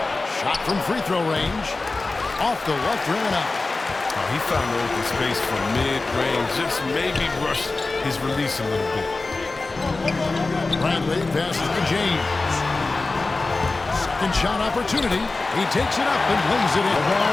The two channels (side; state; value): right; quieter; 3.5 dB